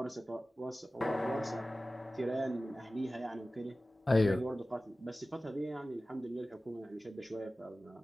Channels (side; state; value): both; normal; correlation 0.96